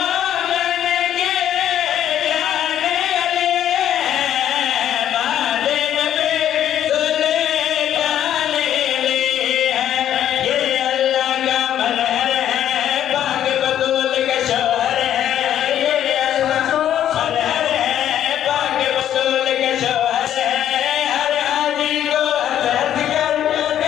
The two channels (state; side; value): quieter; right; 10.8 dB